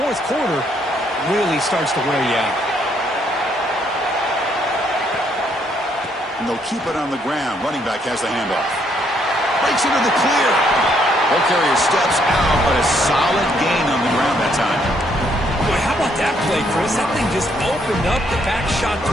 quarter really starts to wear you out. And they'll keep it on the ground. Running back has the handoff. Breaks into the clear. Ball carrier steps out, but a solid gain on the ground that time. Boy, how about that play, Chris? That thing just opened up. The back shot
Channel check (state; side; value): normal; both; correlation 0.71